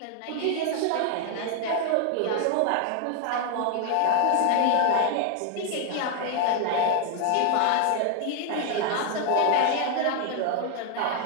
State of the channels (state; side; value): different; both; correlation 0.00